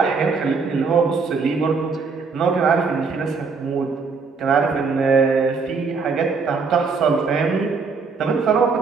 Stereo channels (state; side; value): quieter; left; 4.8 dB